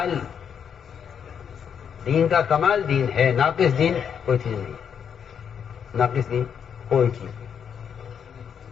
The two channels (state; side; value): quieter; right; 7.7 dB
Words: کمال دین ہے، ناقص دین کوئی چیز نہیں ہے. ناقص دین کوئی چیز نہیں،